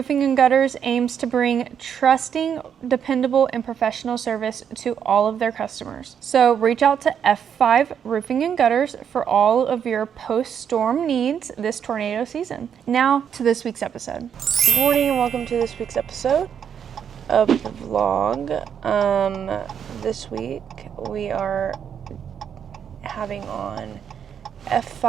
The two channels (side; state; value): left; quieter; 8.1 dB